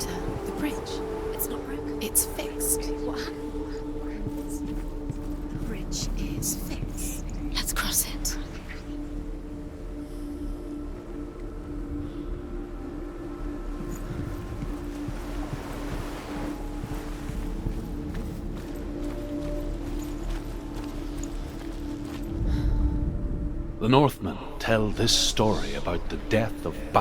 The bridge. It's not broken. It's fixed. What happened? The bridge is fixed. Let's cross it. The Northmen tell this story about the death of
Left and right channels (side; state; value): both; identical; correlation 1.00